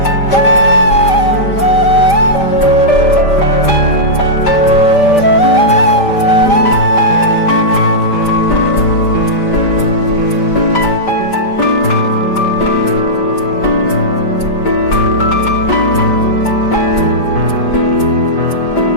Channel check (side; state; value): right; late; 5.1 ms